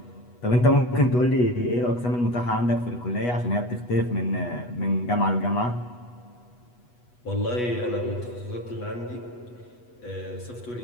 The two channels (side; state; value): right; late; 8.2 ms